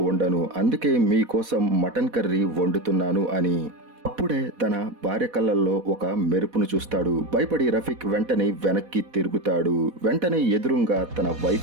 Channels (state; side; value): late; left; 4.1 ms